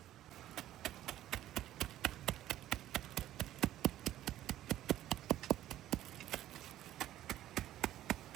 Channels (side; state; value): left; quieter; 13.3 dB